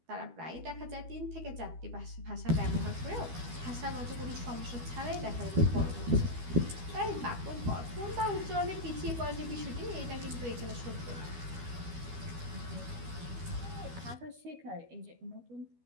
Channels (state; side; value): late; left; 12 ms